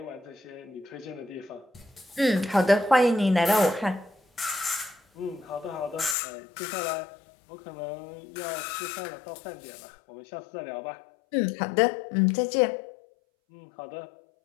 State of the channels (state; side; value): drops out; right; at 6.2 s